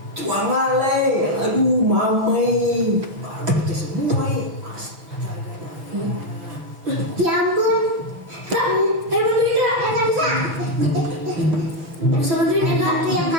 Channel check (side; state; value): left; late; 6.2 ms